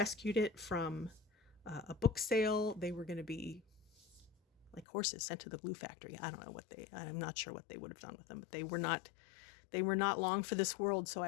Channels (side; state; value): right; drops out; at 4.9 s